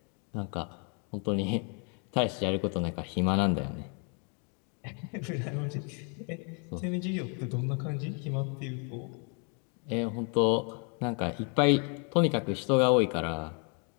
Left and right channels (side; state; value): right; quieter; 38.6 dB